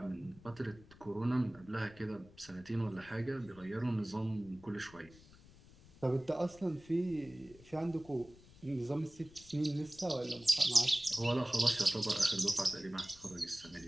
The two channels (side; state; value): left; noise; rumble, 22 dB below the sound